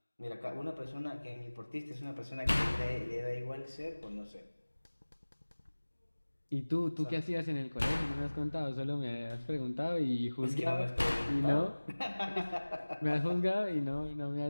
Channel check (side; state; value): both; inverted; correlation -1.00